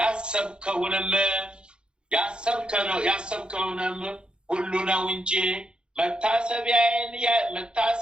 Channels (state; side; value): late; left; 0.051 ms